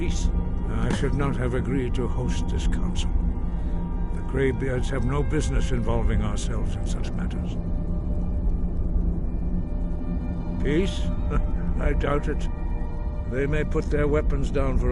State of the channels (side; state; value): both; identical; correlation 1.00